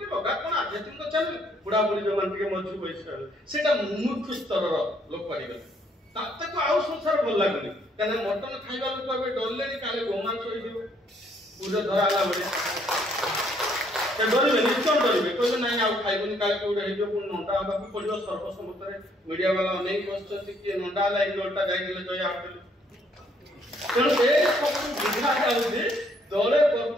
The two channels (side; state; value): both; normal; correlation 0.67